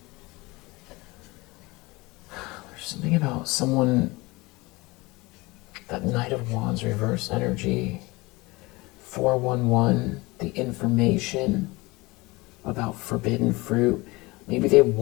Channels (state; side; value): quieter; right; 23.0 dB